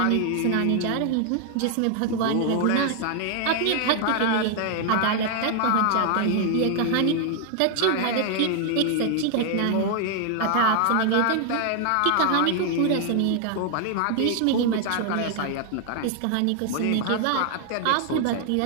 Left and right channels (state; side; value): different; both; correlation 0.00